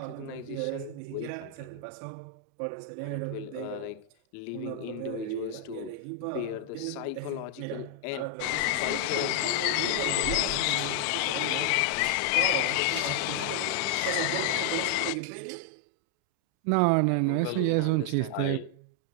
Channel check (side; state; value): both; different; correlation 0.00